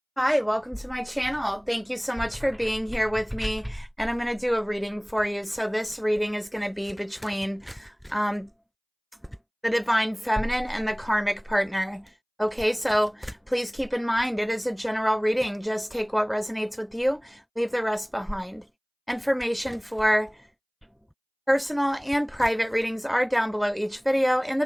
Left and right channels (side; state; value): both; identical; correlation 1.00